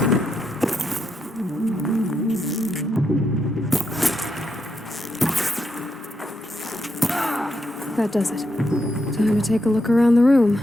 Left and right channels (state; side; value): normal; both; correlation 0.82